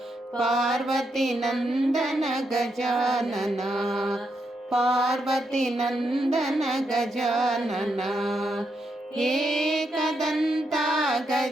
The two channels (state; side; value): normal; both; correlation 0.81